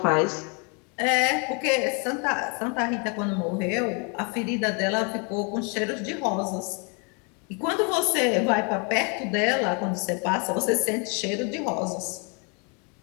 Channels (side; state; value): right; quieter; 34.8 dB